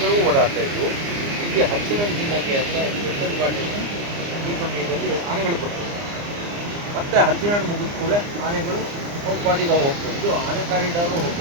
ಓಡಾಡ್ತಾ ಇದ್ವು. ಇಲ್ಲಿ ಹಚ್ಚಿನ ತಿನ್ನಕ್ಕೆ ಅಂತ ಎತ್ತದ ಬಾಟೆಯನ್ನು ಈ ಸಮಯದಲ್ಲಿ ಆನೆಗಳು ಕೊಡ್ತವೆ. ಮತ್ತೆ ಹಲಸಿನಹಣ್ಣು ಮುಗಿದ ಕೂಡಲೇ ಆನೆಗಳು ಅವು ಪಾಟಿಗೆ ಹೋಗ್ತವೆ. ಇದು ಆನೆ ಕಾರಿಡಾರು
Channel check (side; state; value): left; late; 29 ms